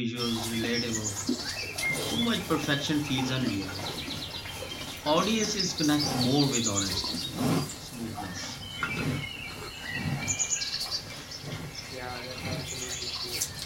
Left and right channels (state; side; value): identical; both; correlation 1.00